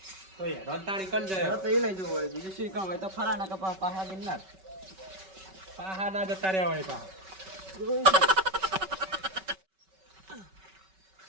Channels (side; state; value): left; late; 5.3 ms